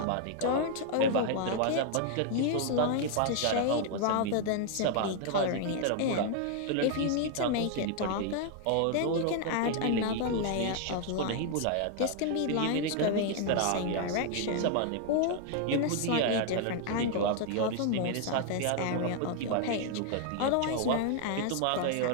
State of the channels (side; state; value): both; different; correlation 0.00